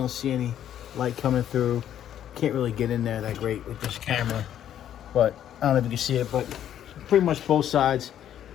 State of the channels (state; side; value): quieter; right; 10.6 dB